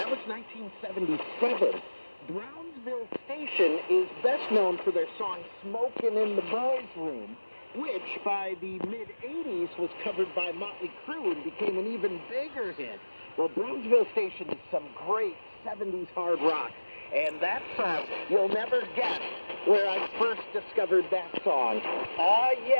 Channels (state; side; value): inverted; both; correlation -1.00